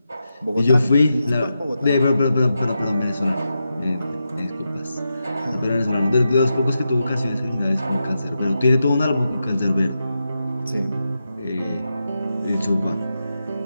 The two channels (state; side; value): inverted; both; correlation -0.88